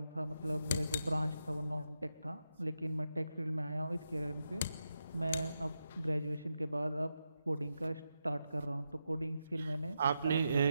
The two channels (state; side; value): inverted; both; correlation -0.86